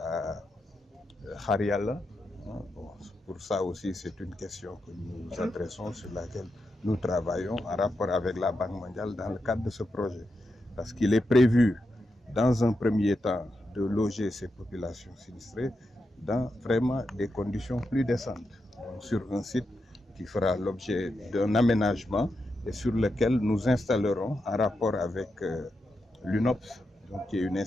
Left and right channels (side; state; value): both; normal; correlation 0.87